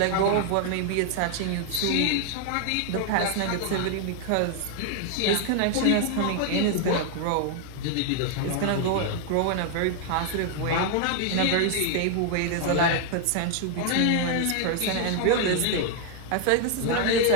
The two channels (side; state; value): both; different; correlation 0.00